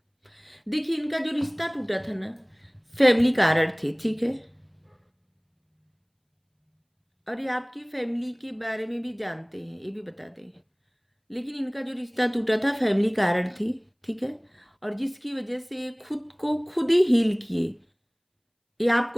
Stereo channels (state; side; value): identical; both; correlation 1.00